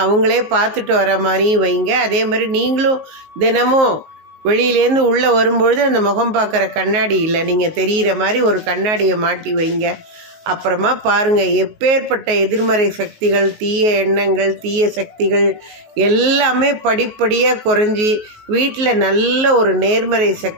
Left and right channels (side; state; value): left; late; 19 ms